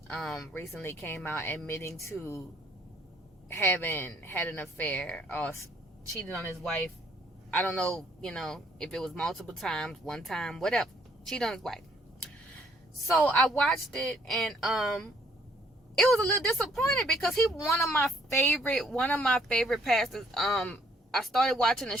recently came out admitting to having had an affair or cheated on his wife. I don't know, if it was multiple times, one time, whatever. Cheated on his wife. So I watched it and it was a little disappointed because he one of my favorite pastors. I started watching a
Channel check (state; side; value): normal; both; correlation 0.65